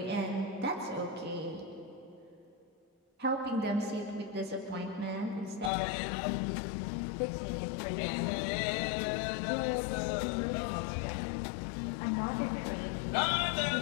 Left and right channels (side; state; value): right; drops out; at 5.7 s